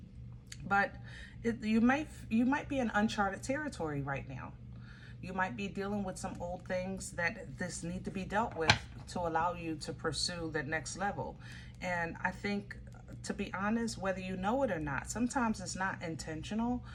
But you might be in uncharted territory right now. You might be dealing with some old things that this need to be dealt with to allow you to pursue the next level. And I think, to be honest, whether you know it or not, sometimes it's not intentional,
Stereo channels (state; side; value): identical; both; correlation 1.00